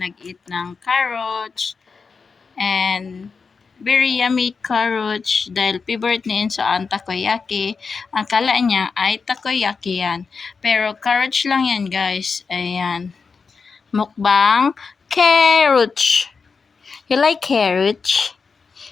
ng carrots and very yummy carrots dahil favorite ni Inso ang takoyaki. Ang kala niya ay takoyaki yan. Pero carrots lang yan guys. Ayan. Mukbang carrots. You like carrots?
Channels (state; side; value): quieter; right; 5.1 dB